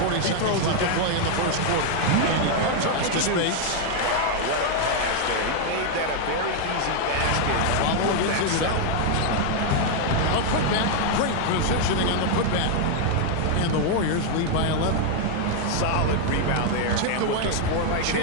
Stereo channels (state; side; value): different; both; correlation 0.00